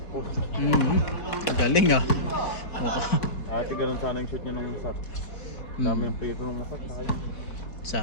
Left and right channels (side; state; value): right; late; 4.7 ms